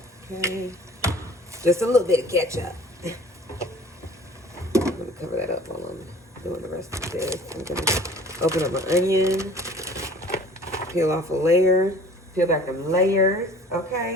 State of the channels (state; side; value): normal; both; correlation 0.48